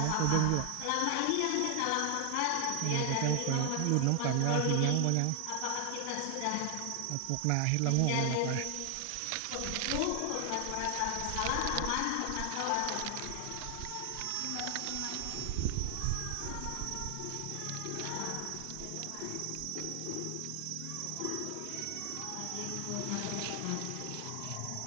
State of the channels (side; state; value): both; different; correlation 0.00